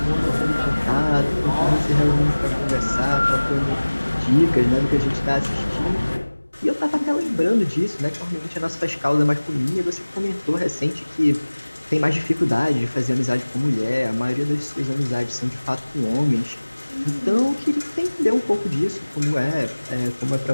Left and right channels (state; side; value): inverted; both; correlation -1.00